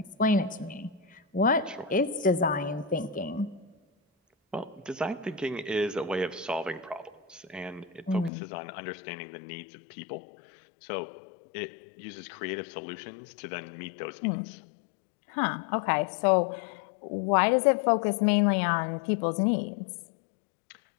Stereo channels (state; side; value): drops out; right; at 8.3 s